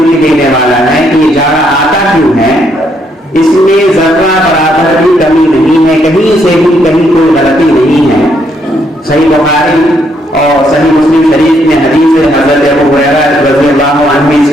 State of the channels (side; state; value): both; normal; correlation 0.73